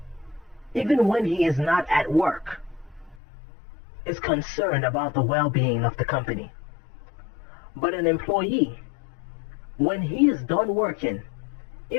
even when he is not at work, is concerned about the well-being of the company. But an employee, when he is done working,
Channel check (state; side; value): drops out; right; at 3.2 s